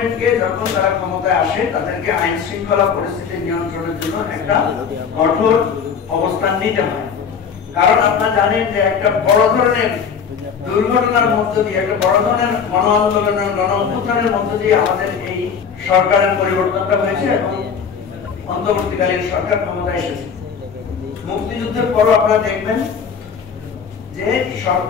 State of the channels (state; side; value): quieter; right; 6.7 dB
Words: যখন তারা ক্ষমতায় আসে তাদেরকে আইন শৃঙ্খলা পরিস্থিতি নিয়ন্ত্রণের জন্য একটা কঠোর অবস্থান নিতে হয়। কারণ আপনারা জানেন যে একটা বড় ধরনের দুর্ঘটনার মধ্য দিয়ে, একটা বড় ধরনের গণ আন্দোলনের, গণ অভ্যুত্থানের মধ্য দিয়ে আমাদের এই সরকারের পরিবর্তনটা হয়েছে এবং অন্তর্বর্তীকালীন সরকার ক্ষমতায় এসেছে। মুক্তিযুদ্ধের পরও আপনারা দেখবেন যে